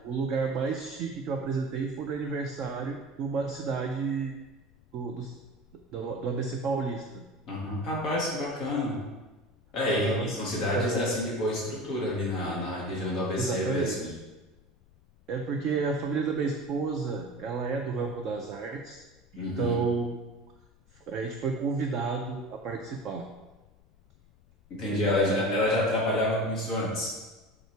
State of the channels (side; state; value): left; noise; rumble, 28 dB below the sound